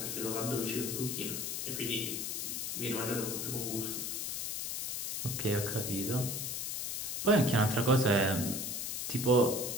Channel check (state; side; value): noise; left; hiss, 2 dB below the sound